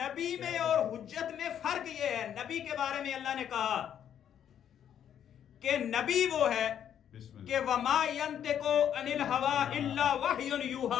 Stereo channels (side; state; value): right; quieter; 9.5 dB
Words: میں اور حجت میں فرق یہ ہے. نبی کے بارے میں اللہ نے کہا کہ نبی وہ ہے کہ وَمَا يَنْتِقُ عَنِ الْهَوَىٰ إِلَّا وَحْيٌ